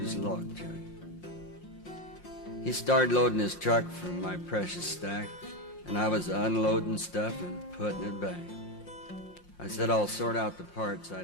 log truck. He started loading his truck from my precious stack, and I was unloading stuff and putting it back. I said I'll sort out the parts I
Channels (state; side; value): late; right; 5.7 ms